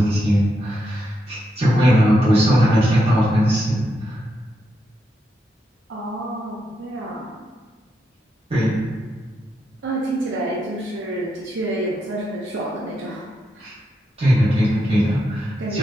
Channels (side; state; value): both; normal; correlation 0.83